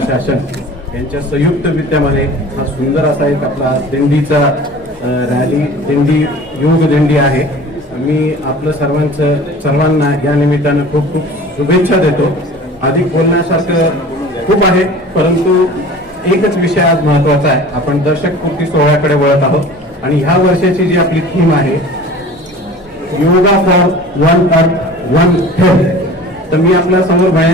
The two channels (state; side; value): normal; both; correlation 0.42